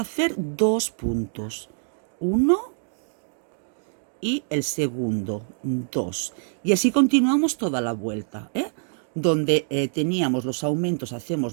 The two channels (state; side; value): silent; left; 62 dB below the other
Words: hacer 2 puntos. 1 y el segundo, 2. Y así continuamos toda la vuelta. Donde teníamos los aumentos, hacemos